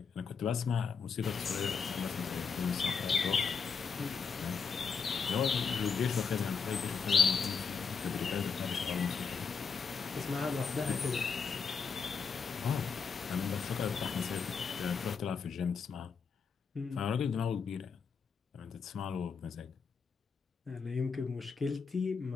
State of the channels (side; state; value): right; quieter; 5.6 dB